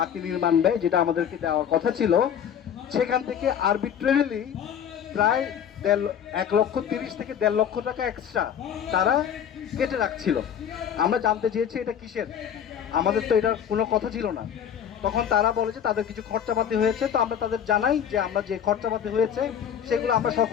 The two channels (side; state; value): right; quieter; 8.7 dB